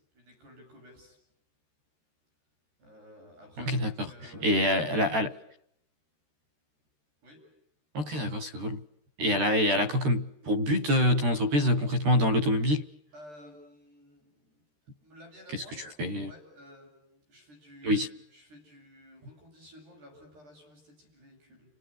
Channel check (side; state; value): left; late; 13 ms